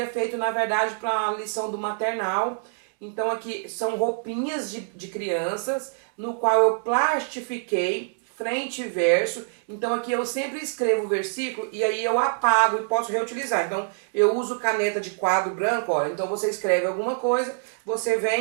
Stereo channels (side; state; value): left; silent; digital silence